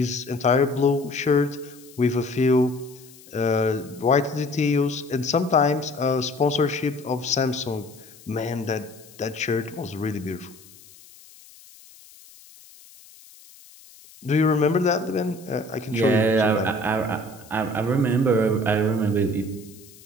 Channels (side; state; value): left; noise; hiss, 23 dB below the sound